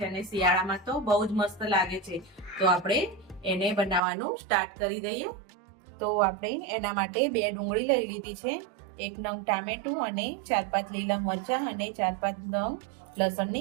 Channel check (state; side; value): drops out; left; at 4.0 s